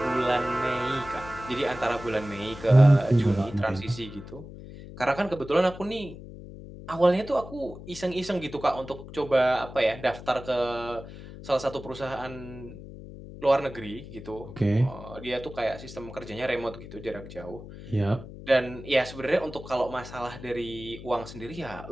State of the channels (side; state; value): left; noise; hum, 14 dB below the sound